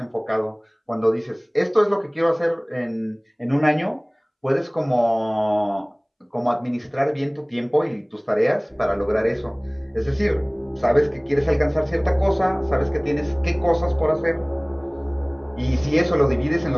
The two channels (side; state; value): both; identical; correlation 1.00